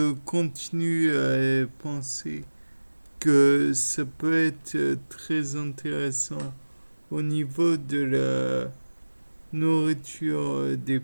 continue à penser que ça peut être très intéressant au niveau de la nourriture des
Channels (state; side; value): inverted; both; correlation -1.00